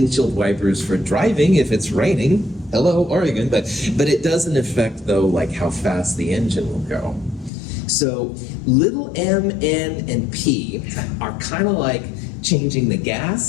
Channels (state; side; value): drops out; right; at 7.5 s